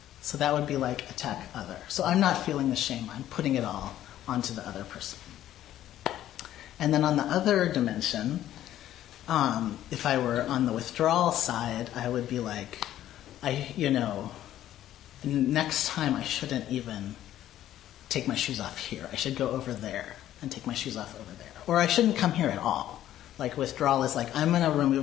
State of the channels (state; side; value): quieter; right; 12.5 dB